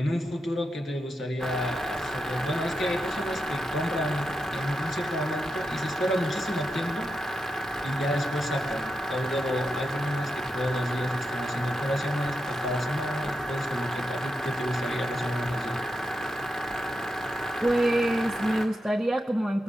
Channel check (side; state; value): both; normal; correlation 0.87